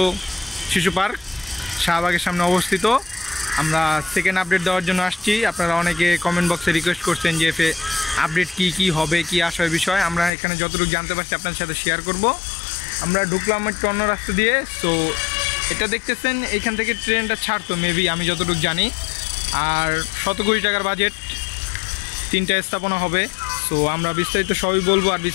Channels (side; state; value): right; drops out; at 10.3 s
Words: শিশু পার্ক শাহবাগের সামনে অবস্থিত। আমরা সেকেন্ড আপডেট দেওয়ার জন্য আসছি। আপনারা অনেকে কমেন্ট বক্সে রিকোয়েস্ট করছেন যে আপডেট কি হবে, কি আসার বিষয়। আমরা এখানে যতটুকু জানতে পারছি আপনার সাথে শেয়ার করব। আমরা ঢুকলাম একটু অন্য রাস্তা দিয়ে। সো এটা দেখতেছেন, এইখান থেকে ট্রেনটা ছাড়তো মেবি, আমি যতটুকু জানি। আর 100 কোটি টাকার বাজেট, 3টা স্থাপনা হবে। সো আমরা বিস্তারিত সবই বলবো, আর